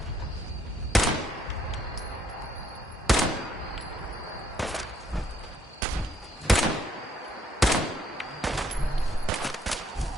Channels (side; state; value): both; normal; correlation 0.69